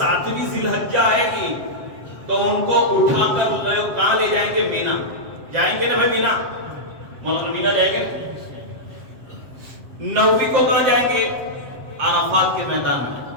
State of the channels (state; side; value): late; left; 7.6 ms